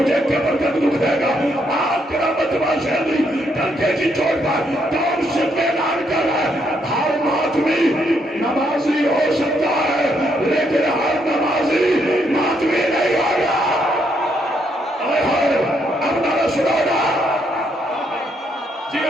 قبر تک دکھ دے گا. آپ کرامت باشندی ڈنکے کی چوٹ پر کون سے اعلان کر رہا ہے, ہر ماتمی نمازی ہو سکتا ہے لیکن ہر نمازی ماتمی نہیں ہوگا. اب نہ سنو گا جی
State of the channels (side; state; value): both; normal; correlation 0.74